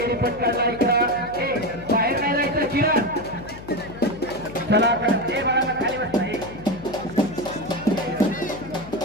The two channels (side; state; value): left; noise; hum, 15 dB below the sound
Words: पटकाला इकडं बाहेर नाही जायचं. चिरा चला बाळाला खाली बसता.